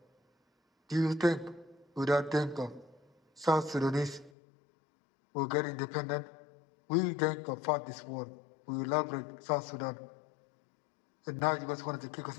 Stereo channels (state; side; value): drops out; right; at 4.3 s